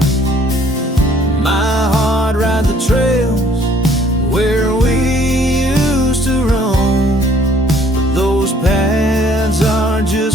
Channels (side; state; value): both; normal; correlation 0.60